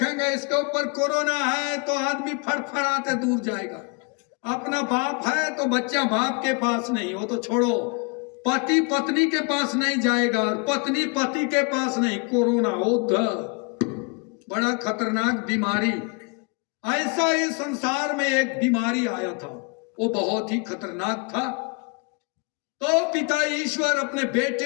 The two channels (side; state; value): right; quieter; 33.5 dB